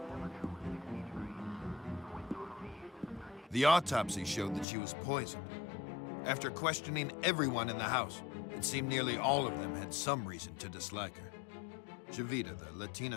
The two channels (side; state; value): right; drops out; at 4.7 s